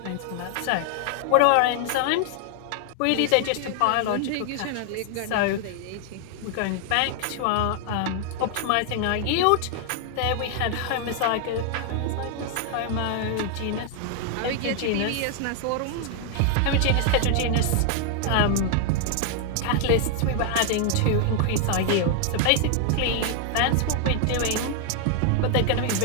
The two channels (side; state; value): both; different; correlation 0.00